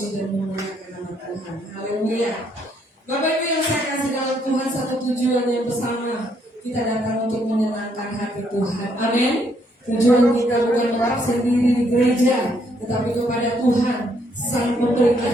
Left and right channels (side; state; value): both; normal; correlation 0.71